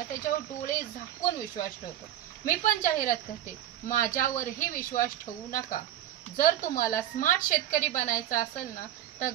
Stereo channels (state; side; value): quieter; left; 12.2 dB